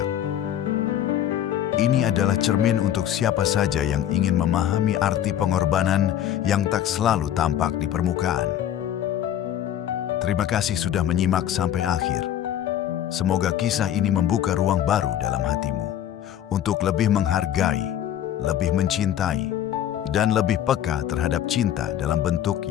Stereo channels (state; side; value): quieter; right; 10.9 dB